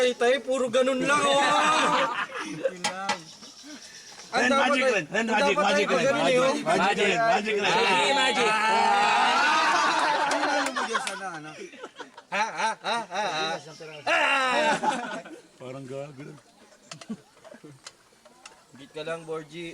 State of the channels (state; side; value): identical; both; correlation 1.00